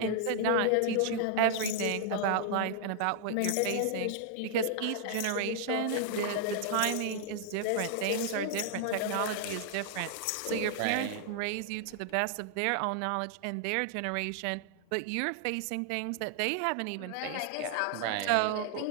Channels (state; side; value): different; both; correlation 0.00